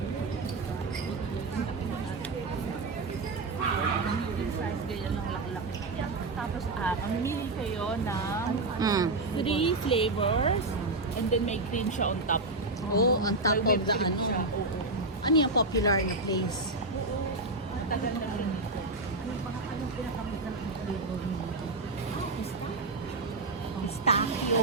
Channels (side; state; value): left; quieter; 3.1 dB